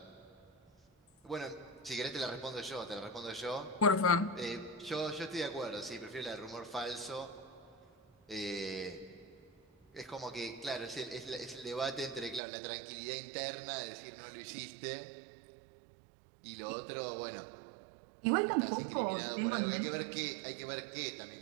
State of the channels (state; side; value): drops out; left; at 12.4 s